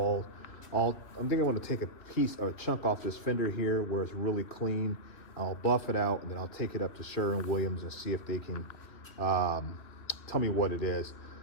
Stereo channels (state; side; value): late; right; 2.9 ms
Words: I'm thinking I'm going to take a piece or a chunk off this fender here where it's really clean. I'll buff it out, and then I'll take it up to Sherwin-Williams and see if they can tell me what it is.